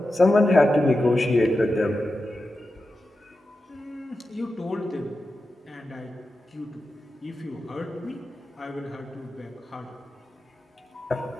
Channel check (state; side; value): normal; both; correlation 0.91